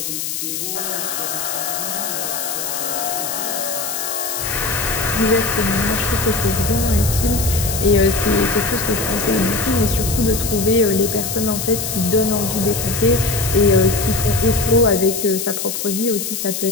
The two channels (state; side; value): noise; left; hiss, 4 dB below the sound